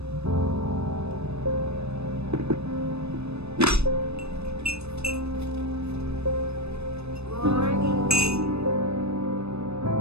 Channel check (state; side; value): late; left; 0.79 ms